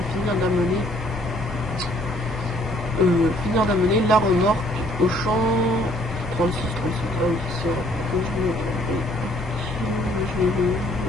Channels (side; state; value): both; normal; correlation 0.62